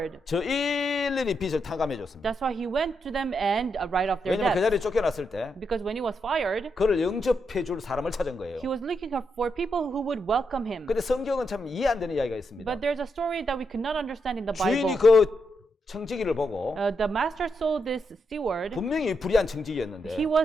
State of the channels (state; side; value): normal; both; correlation 0.82